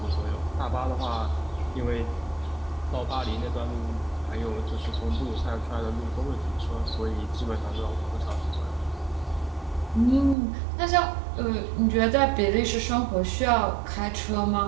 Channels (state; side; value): drops out; left; at 10.4 s